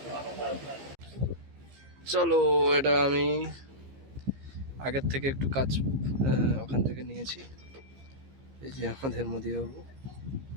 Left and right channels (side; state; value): left; late; 15 ms